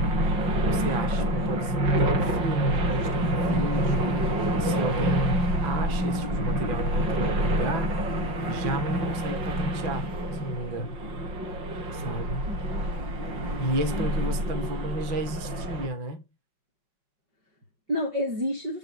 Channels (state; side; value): late; left; 5.9 ms